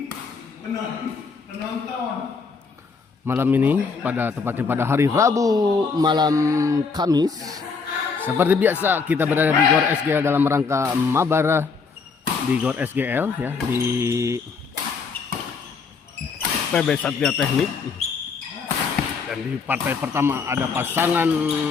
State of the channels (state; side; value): quieter; right; 5.0 dB